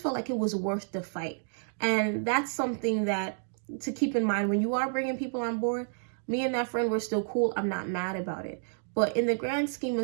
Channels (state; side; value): silent; left; digital silence